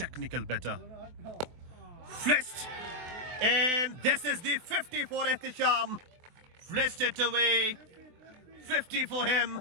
batter. Flashed. And this is the 50 for Ehtisham. Flashed it away. 50 for him.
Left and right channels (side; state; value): left; late; 24 ms